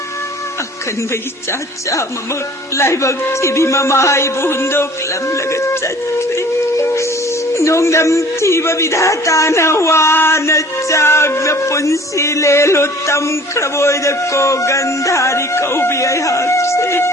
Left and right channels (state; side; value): normal; both; correlation 0.49